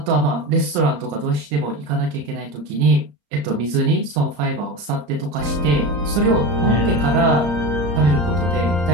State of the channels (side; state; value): left; late; 34 ms